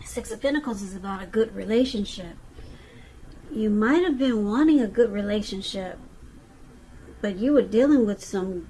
Six of Pentacles is about a good relationship. You might have been wanting a good relationship, but you were dealing with some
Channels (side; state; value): both; identical; correlation 1.00